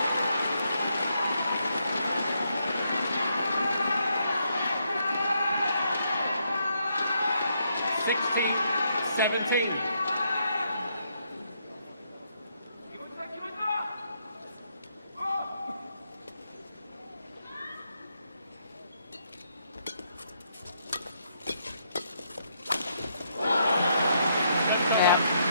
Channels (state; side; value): inverted; both; correlation -0.76